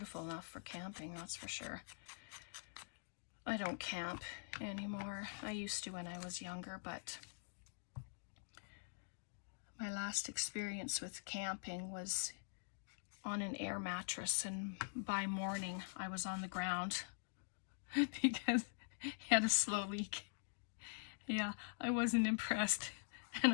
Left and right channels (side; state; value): right; silent; digital silence